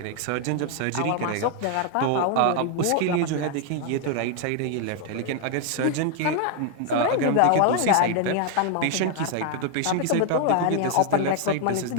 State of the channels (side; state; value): both; different; correlation 0.00